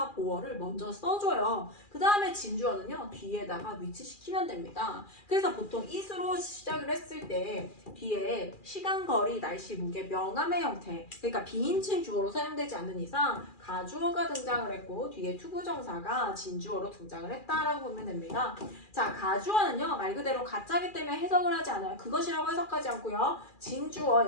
보어를 먼저 써줘요. 그 다음에 진주어는요 뒤에다가 위치시키면 됩니다. 그래서 보통 it으로 시작을 했을 때 뒤에 시간, 거리, 날씨, 무게, 명암의 형태 그러니까 비인칭 주어로 사용되지 않는 이상 가주어가 등장을 했고 뒤에 투부정사가 진주어로 등장을 했다라고 보면 됩니다. 자, 가주어는요 말 그대로 가짜기 때문에 해석을 하지 않아요. 그것이라고 해석하지 않고요. 진주어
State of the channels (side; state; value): right; late; 2.4 ms